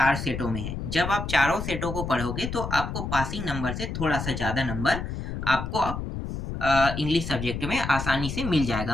सेटों में है। जब आप चारों सेटों को पढ़ोगे तो आपको पासिंग नंबर से थोड़ा सा ज़्यादा नंबर आपको इंग्लिश सब्जेक्ट में आसानी से मिल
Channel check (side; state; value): left; noise; rumble, 5 dB below the sound